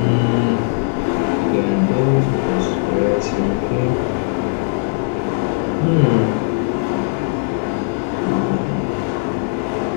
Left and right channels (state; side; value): silent; right; digital silence